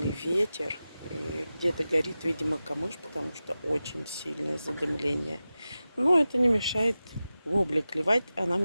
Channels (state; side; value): inverted; both; correlation -0.94